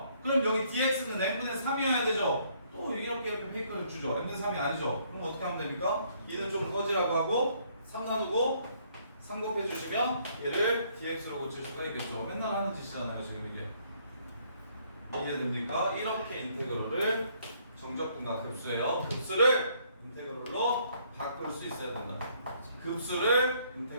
그럼 여기 dx는 n분의 3이어야 되죠. 또 이렇게 페이커를 주죠. n분의 3이 아니죠. 그럼 어떻게 하면 됩니까? 2는 좀 꺼지라고 하고 3 나누고 3 곱해주시면 얘를 dx로 고칠 수가 있겠죠. 맨날 하는 짓이잖아요 지금 이게. 이해됩니까? 이렇게 인테그럴을 정적분과 급수예요. 급수를 인테그럴로 바꿀 수 있어야 된다. 급수를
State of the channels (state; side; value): inverted; both; correlation -0.66